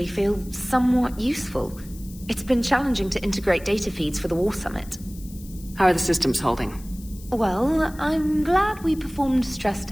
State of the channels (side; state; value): left; noise; hiss, 20 dB below the sound